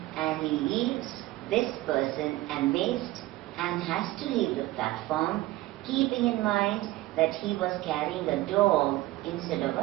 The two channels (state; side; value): quieter; left; 17.7 dB